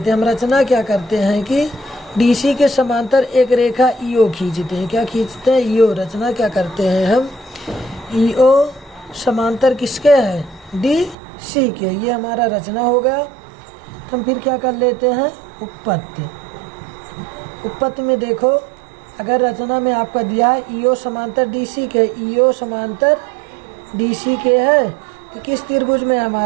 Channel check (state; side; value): drops out; left; at 11.2 s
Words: हैं। हम रचना क्या करते हैं कि DC के समांतर एक रेखा EO खींचते हैं। क्या खींचते हैं EO। रचना क्या करते हैं हम EO समांतर किसके है DC के। ये हमारा रचना हो गया। हम फिर क्या कर लेते हैं उत्पत्ति। उत्पत्ति में देखो अगर रचना में आपका दिया है EO समांतर DC के, EO समांतर DC के है, तो किस त्रिभुज में